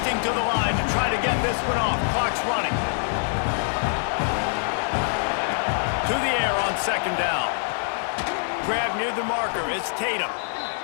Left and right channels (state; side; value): silent; right; digital silence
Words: to the line to try to get this one off. Clock's running. To the air on second down. Grab near the marker. It's Tatum.